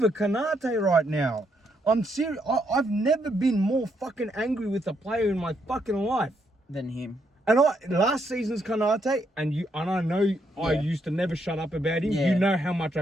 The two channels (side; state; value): both; normal; correlation 0.76